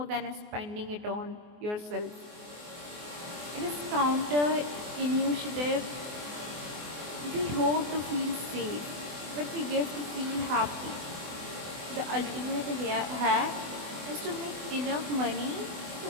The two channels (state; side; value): late; left; 24 ms